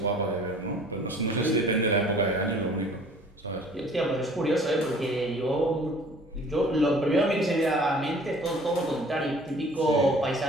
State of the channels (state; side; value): normal; both; correlation 0.51